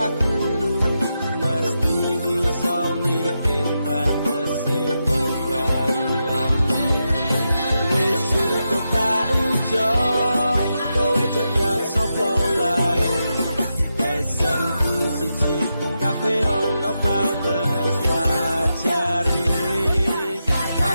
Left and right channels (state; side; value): inverted; both; correlation -0.87